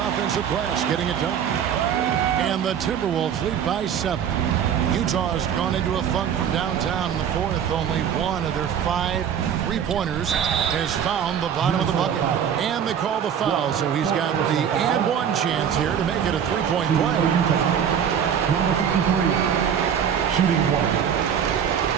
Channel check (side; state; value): left; quieter; 8.4 dB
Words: offensive glass, getting it done. And the Timberwolves lead by 7. Utah's gone into a funk from downtown in the 4th. Only one of their 5 3-pointers has found the bottom of the bucket. And they call the foul, so he's got the and-one chance here to make it a 3-point play. Number 53, shooting 1.